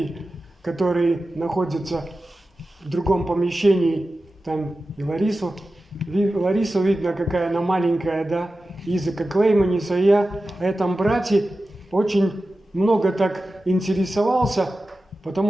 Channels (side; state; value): both; normal; correlation 0.94